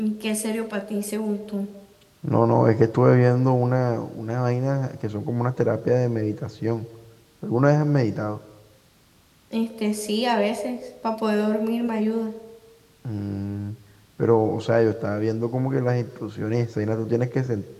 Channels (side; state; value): both; identical; correlation 1.00